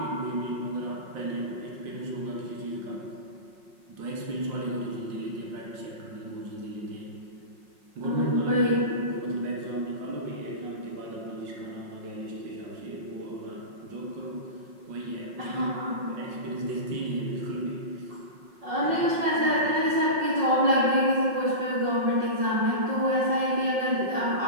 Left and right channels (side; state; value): left; late; 5.5 ms